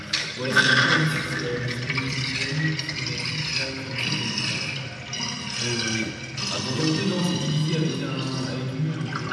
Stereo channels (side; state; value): both; identical; correlation 1.00